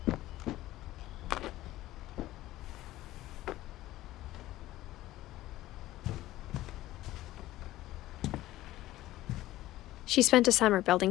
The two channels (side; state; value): right; quieter; 15.7 dB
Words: She spent a summer building